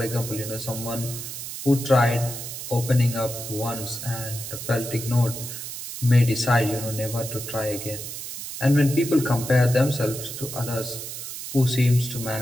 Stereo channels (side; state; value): right; noise; hiss, 8 dB below the sound